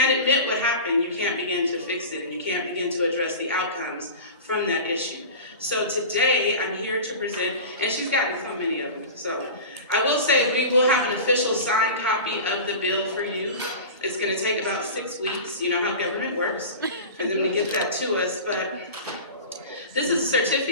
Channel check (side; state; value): both; inverted; correlation -0.33